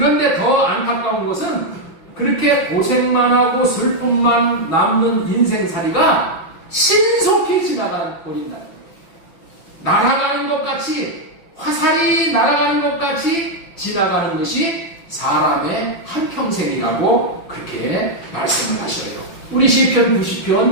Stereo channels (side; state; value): right; late; 5.9 ms